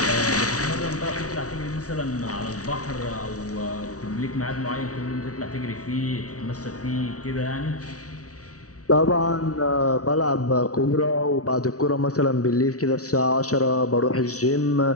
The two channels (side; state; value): right; late; 0.67 ms